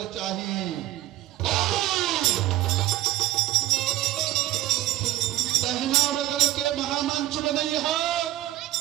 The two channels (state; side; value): quieter; left; 14.8 dB